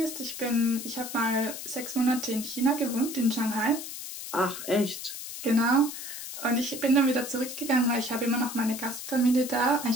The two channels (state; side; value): noise; left; hiss, 9 dB below the sound